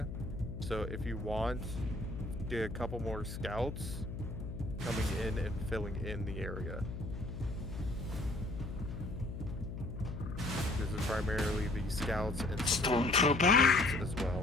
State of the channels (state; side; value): noise; left; hum, 7 dB below the sound